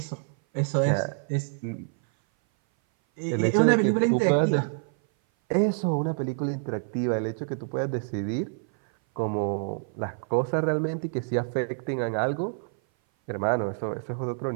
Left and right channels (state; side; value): silent; left; 57 dB below the other